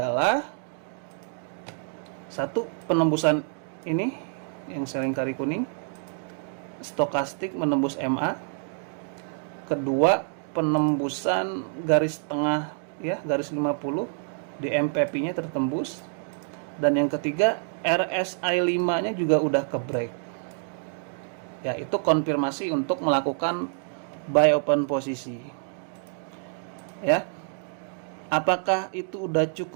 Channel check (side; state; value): left; silent; 60 dB below the other